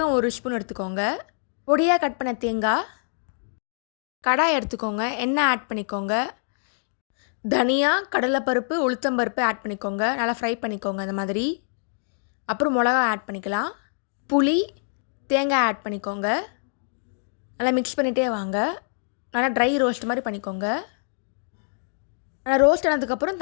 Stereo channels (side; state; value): right; silent; digital silence